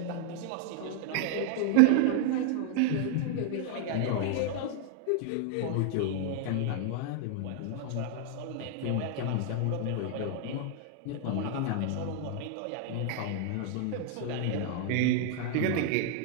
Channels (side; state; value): both; different; correlation 0.00